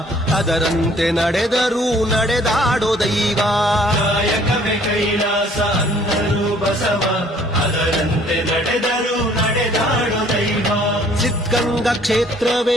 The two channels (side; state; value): both; normal; correlation 0.58